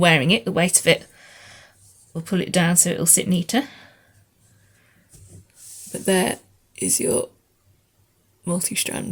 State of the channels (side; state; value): both; identical; correlation 1.00